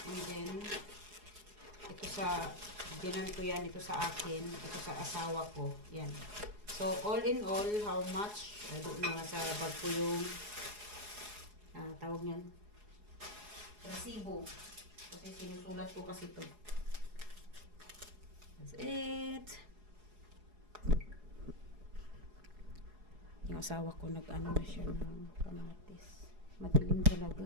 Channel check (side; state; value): left; late; 4.8 ms